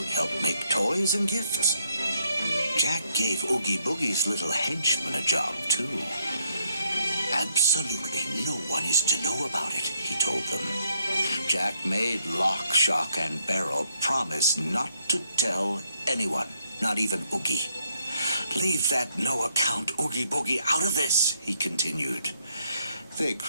help make toys and gifts. Jack gave Oogie Boogie's little henchman a job, too. Absolutely no one is to know about it, he told them. Jack made Lock, Shock, and Barrel promise not to tell anyone, not even Oogie. Leave that no-account Oogie Boogie out of this, he continued. They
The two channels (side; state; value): both; inverted; correlation -0.73